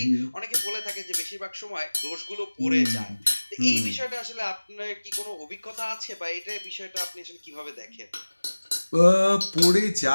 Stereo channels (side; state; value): both; inverted; correlation -1.00